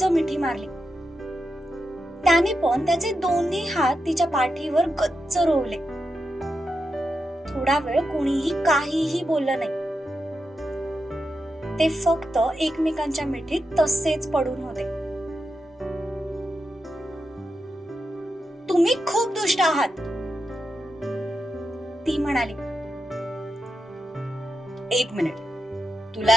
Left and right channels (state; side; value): normal; both; correlation 0.88